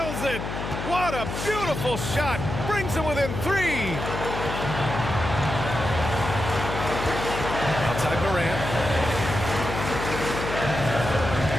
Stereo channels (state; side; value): noise; left; hum, 6 dB below the sound